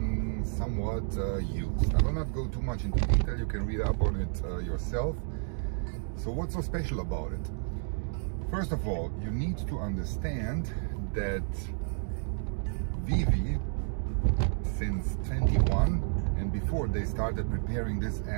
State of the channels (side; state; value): left; silent; 57 dB below the other